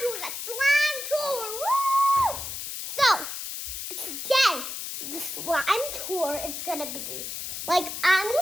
a slime tour. Woo! So, today, the slime tour is going to be, like, I'm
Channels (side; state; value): left; noise; hiss, 6 dB below the sound